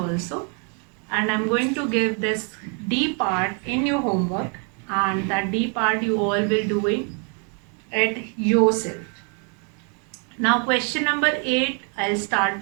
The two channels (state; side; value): quieter; left; 38.7 dB